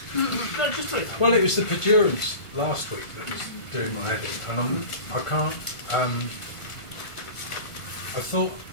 No, just wait. Well, it was the perdurance last week that was doing my head in, and I can't. I thought,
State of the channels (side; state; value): right; late; 1.5 ms